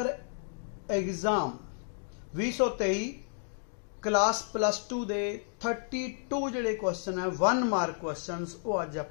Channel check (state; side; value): silent; right; digital silence